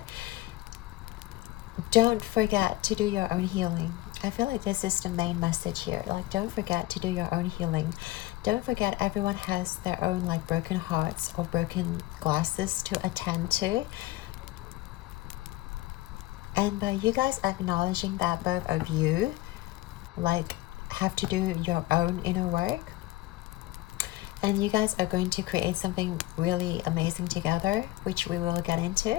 don't forget to do your own healing. I feel like this is the main message here. Like, don't forget to do your own healing. Don't forget everyone has their own like broken hearts or broken glasses to attend to. And by you guys acknowledging that both of you like have to do your own inner work, and you guys are going to create something really amazing together, which we will get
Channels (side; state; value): right; quieter; 18.0 dB